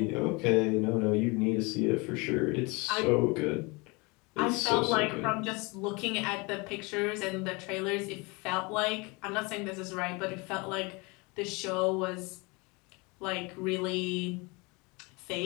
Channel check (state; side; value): quieter; right; 27.5 dB